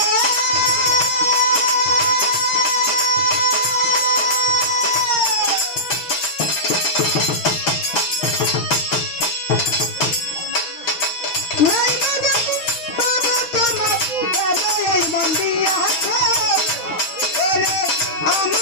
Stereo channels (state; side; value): late; right; 6.4 ms